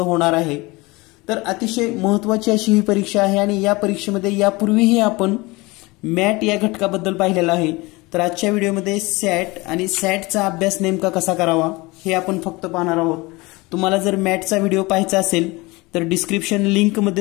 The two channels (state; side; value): quieter; right; 23.4 dB